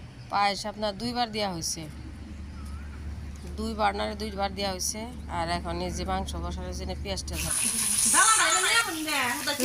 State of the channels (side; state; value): both; identical; correlation 1.00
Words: পায়েস আপনার 2বার দেওয়া হয়েছে 2বার দেওয়া হয়েছে আর এখন এই যে মাংস বসানোর জন্য পেঁয়াজটা